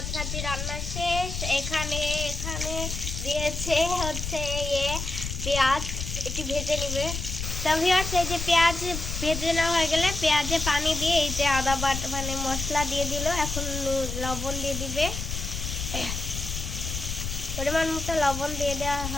ভাজি রান্না শেষ। এখানে দিয়েছে হচ্ছে পেঁয়াজ, এটি ভেজে নিবে। তো ভিউয়ার্স, এই যে পেঁয়াজ ভেজে নেওয়া হয়ে গেলে পেঁয়াজে পানি দিয়ে এই যে আদা বাটা মানে মশলা দিয়ে দিল। এখন লবণ দিয়ে দিবে, পরিমাণ মতো লবণ দিয়ে দেওয়া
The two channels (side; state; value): left; noise; rumble, 5 dB below the sound